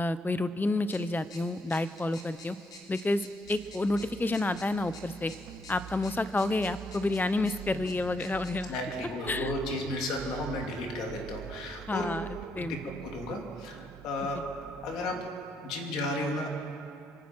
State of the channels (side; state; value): both; normal; correlation 0.76